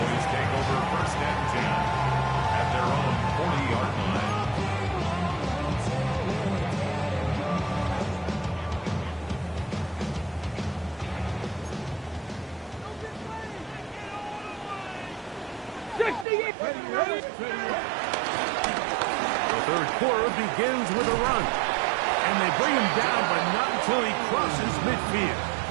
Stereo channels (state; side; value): drops out; left; at 16.2 s